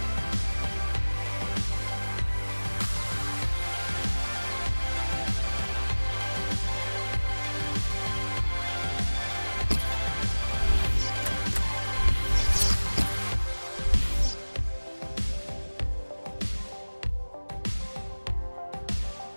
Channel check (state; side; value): inverted; both; correlation -1.00